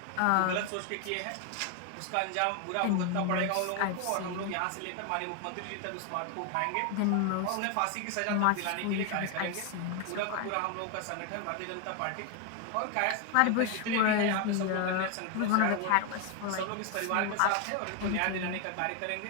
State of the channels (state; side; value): different; both; correlation 0.01